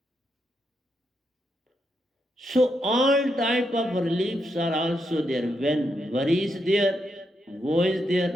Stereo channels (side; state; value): both; normal; correlation 0.82